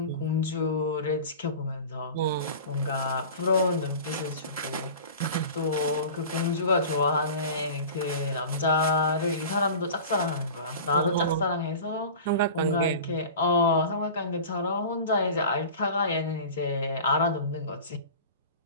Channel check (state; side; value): inverted; both; correlation -0.36